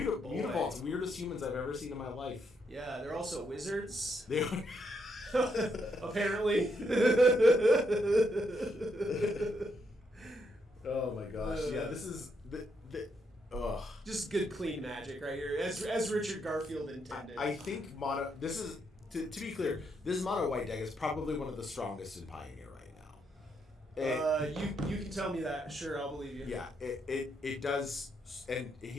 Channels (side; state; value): both; normal; correlation 0.77